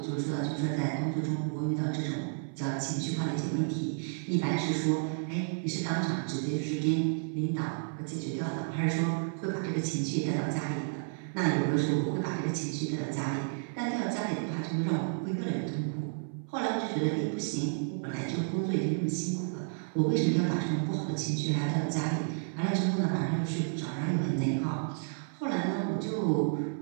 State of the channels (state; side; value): silent; left; 57 dB below the other